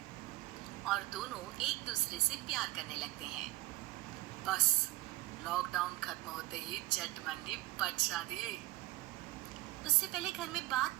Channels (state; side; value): quieter; left; 19.2 dB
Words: और दोनों एक दूसरे से प्यार करने लगते हैं। बस लॉकडाउन खत्म होते ही झट मंडी बच शादी। उससे पहले घर में बात